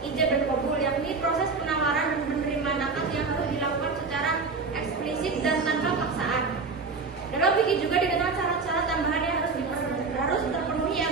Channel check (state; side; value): quieter; left; 4.3 dB